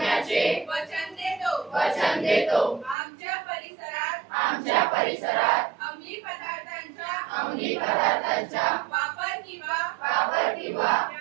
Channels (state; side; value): drops out; left; at 3.0 s